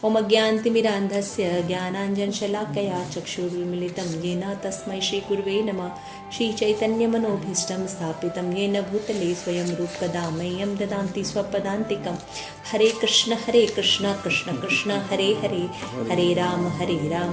ओम अज्ञानतिमिरान्धस्य ज्ञानाञ्जनशलाकया चक्षुरुन्मीलितं येन तस्मै श्रीगुरुवे नमः। श्रीचैतन्यमनोभीष्टं स्थापितं येन भूतले स्वयं रूपकदा मह्यं ददाति स्वपदान्तिकं। हरे कृष्ण कृष्ण कृष्ण हरे हरे, हरे राम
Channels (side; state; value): both; identical; correlation 1.00